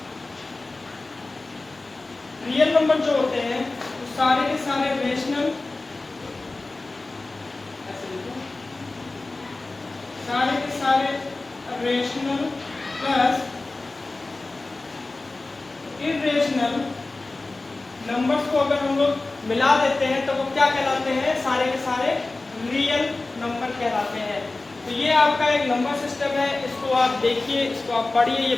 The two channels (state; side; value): quieter; right; 3.2 dB